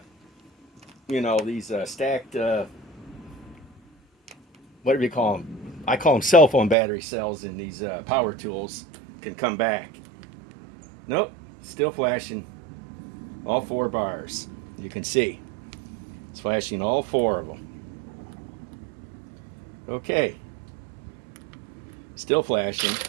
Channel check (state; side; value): drops out; left; at 6.8 s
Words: you know, these stacked, what do you call them? I call them cell phone battery cells in these power tools can come back. Nope, still flashing all 4 bars. You can see. It's flashing all 4 of them. Okay. Still flashing.